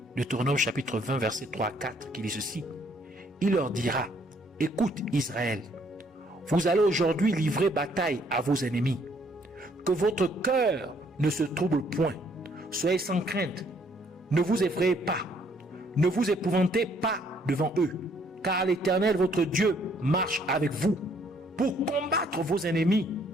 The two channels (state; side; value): normal; both; correlation 0.66